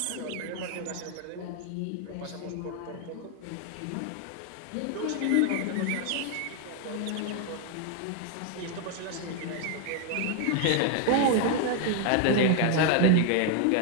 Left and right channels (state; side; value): different; both; correlation 0.01